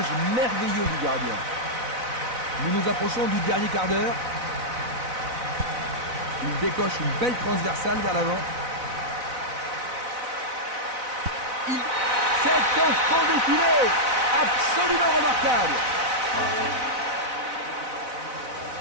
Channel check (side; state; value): left; late; 4.0 ms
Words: merveilleux du gardien. Nous nous approchons du dernier quart d'heure. Il décoche une belle transversale vers l'avant. C'est un fond défilé absolument remarquable.